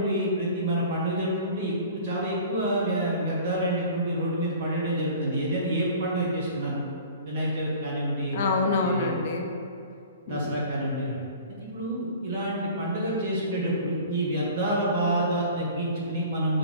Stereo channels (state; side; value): inverted; both; correlation -0.44